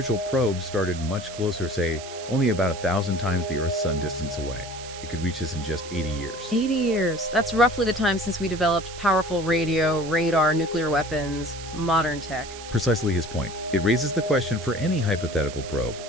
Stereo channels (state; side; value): noise; right; hiss, 14 dB below the sound